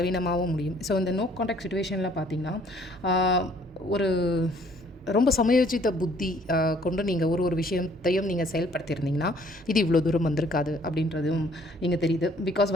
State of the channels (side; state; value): both; normal; correlation 0.60